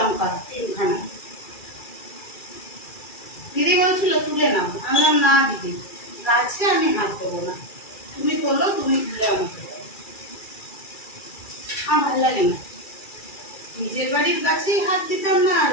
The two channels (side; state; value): right; late; 2.3 ms